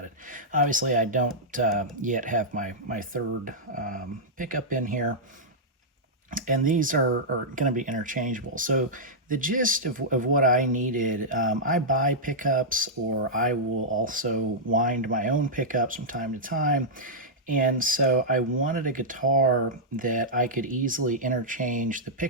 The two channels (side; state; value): both; normal; correlation -0.10